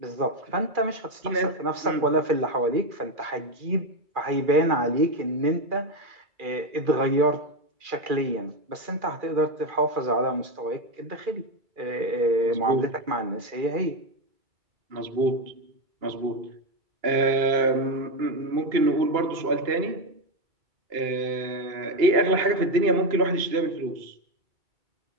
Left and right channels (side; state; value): left; late; 2.4 ms